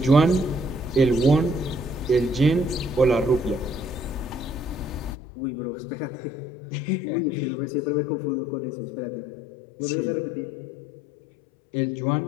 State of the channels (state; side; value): drops out; right; at 5.2 s